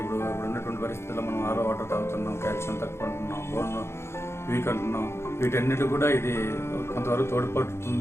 ఇప్పుడు ఉన్నటువంటి పరిస్థితుల్లో మనం ఆరో వాటర్ తాగుతున్నాం, కాల్షియం తక్కువ ఉంటున్నాం, బోన్ వీక్ అంటున్నాం. వీటన్నిటి కూడా ఇది కొంతవరకు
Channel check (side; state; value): right; late; 0.12 ms